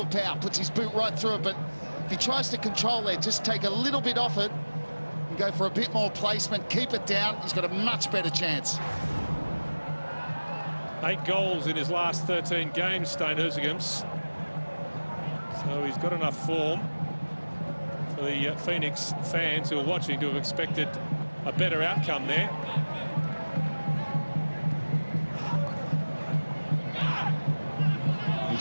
power, puts his boot right through it, but if he tries to control there, just take a little bit off it and go for a bit more placement, keep it down, he's got a much better chance. 8 goals in his last 13 games, Stain Isaacham's. So he's got enough form for the Phoenix fans who are watching to have expected a better outcome there. You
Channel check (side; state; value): both; inverted; correlation -1.00